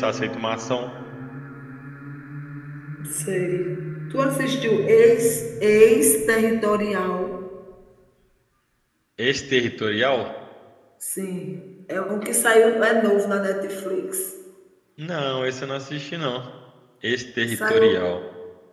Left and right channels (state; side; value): identical; both; correlation 1.00